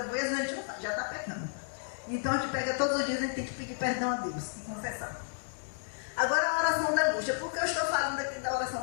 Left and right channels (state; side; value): silent; right; 56 dB below the other